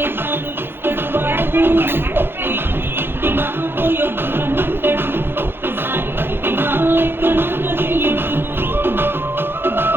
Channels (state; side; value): late; left; 0.10 ms